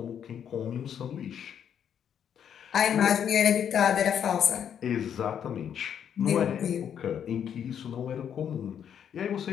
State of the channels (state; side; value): quieter; right; 8.7 dB